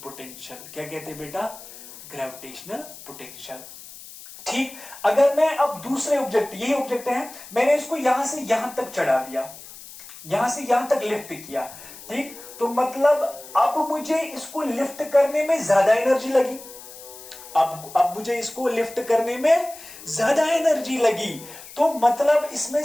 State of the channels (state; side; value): noise; left; hiss, 16 dB below the sound